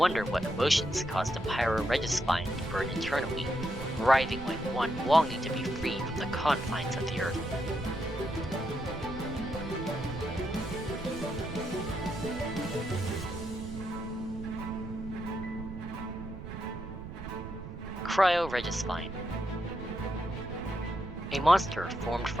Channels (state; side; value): noise; right; rumble, 10 dB below the sound